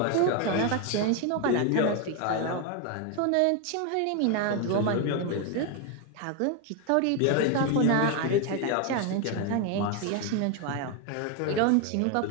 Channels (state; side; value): different; both; correlation 0.01